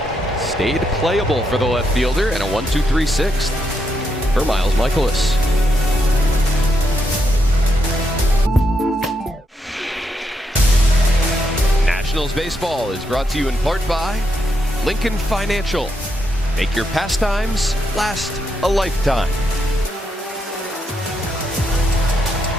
Stayed playable for the left fielder, and a 1-2-3 sixth for Miles Michaelis. Nationals baseball is brought to you in part by Lincoln Financial. Make your pastimes last a lifetime.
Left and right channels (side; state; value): both; normal; correlation 0.80